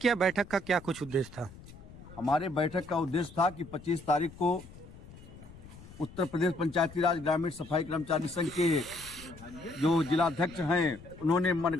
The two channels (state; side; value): noise; left; rumble, 18 dB below the sound